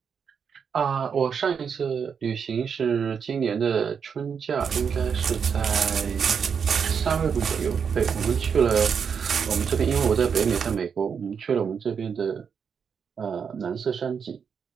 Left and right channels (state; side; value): quieter; left; 6.7 dB